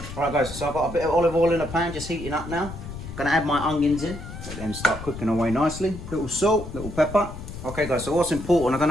All right, guys, so I've got a bit of olive oil in the pan, just heating up now. Gonna add my onions in, let them start cooking away nicely. Little salt, little pepper. Okay, guys, so what's important, I don't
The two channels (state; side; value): noise; left; rumble, 11 dB below the sound